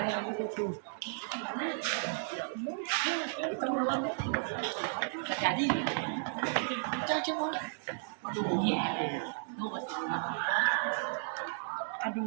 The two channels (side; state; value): left; silent; digital silence